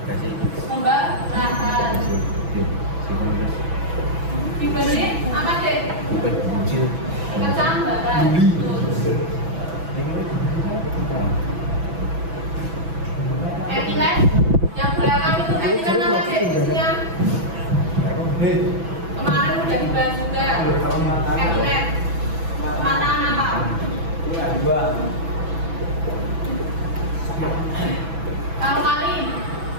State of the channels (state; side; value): late; left; 6.0 ms